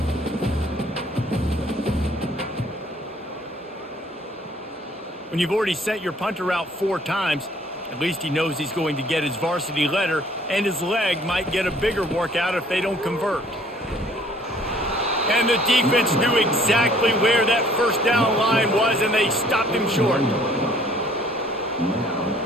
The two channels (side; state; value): both; normal; correlation 0.58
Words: When you've already sent your punter out 4 times, at least he knows he's going to get his varsity letter, and his leg might get a bigger workout if they don't convert. And the defense knew exactly where that first down line was, and they stopped him short. Now,